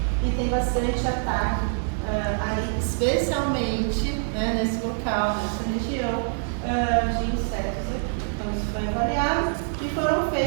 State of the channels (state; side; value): silent; left; digital silence